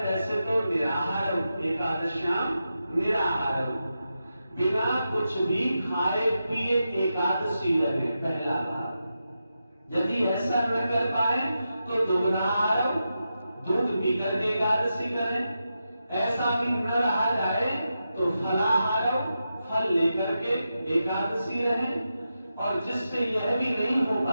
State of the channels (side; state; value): both; inverted; correlation -0.89